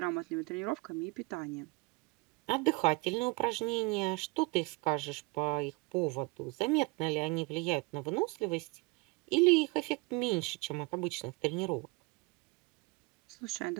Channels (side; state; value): left; quieter; 26.5 dB